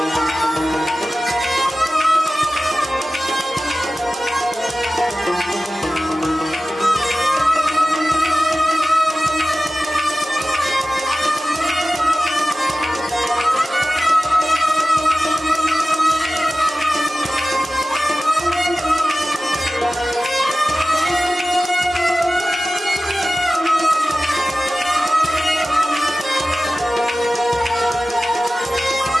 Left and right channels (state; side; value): normal; both; correlation 0.96